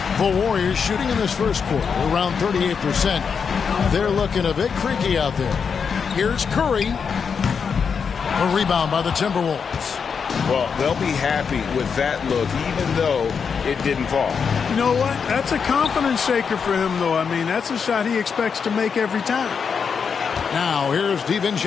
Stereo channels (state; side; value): quieter; right; 6.2 dB